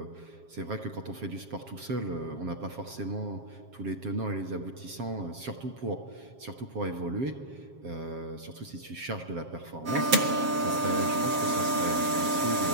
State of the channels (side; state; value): left; late; 7.4 ms